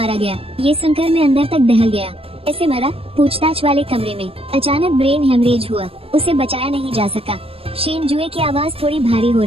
गया, ये सुनकर मैं अंदर तक दहल गया। ऐसे मरा? पूछताछ वाले कमरे में अचानक ब्रेन हेमरेज हुआ। उसे बचाया नहीं जा सका। शेन जुए की आवाज थोड़ी भारी हो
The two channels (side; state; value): left; late; 0.28 ms